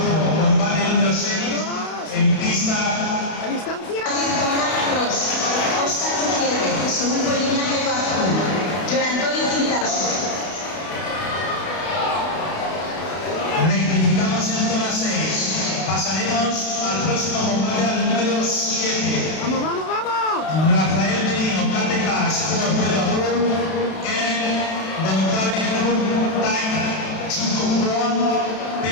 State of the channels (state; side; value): late; right; 32 ms